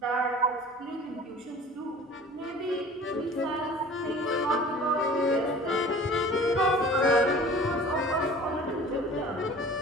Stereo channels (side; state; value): both; normal; correlation 0.44